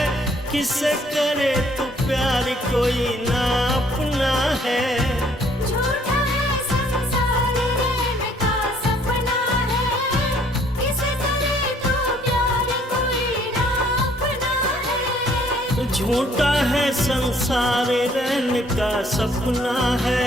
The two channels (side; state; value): both; normal; correlation 0.62